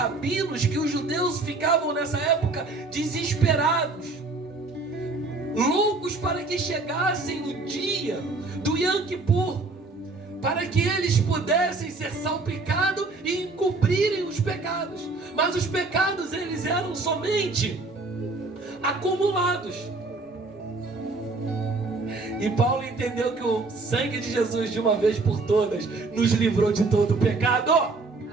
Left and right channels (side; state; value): left; quieter; 3.5 dB